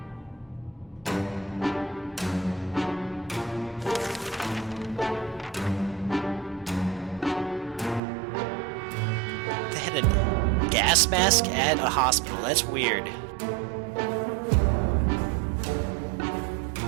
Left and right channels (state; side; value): drops out; left; at 8.0 s